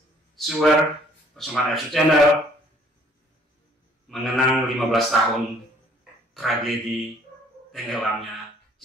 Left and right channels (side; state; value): both; normal; correlation 0.59